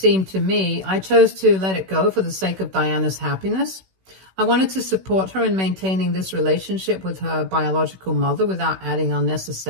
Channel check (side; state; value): left; late; 16 ms